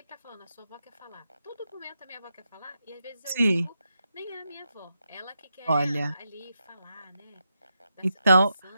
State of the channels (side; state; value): both; inverted; correlation -0.85